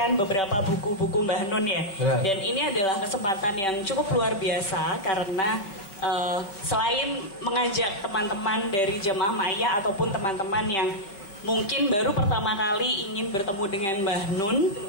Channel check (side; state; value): right; late; 5.2 ms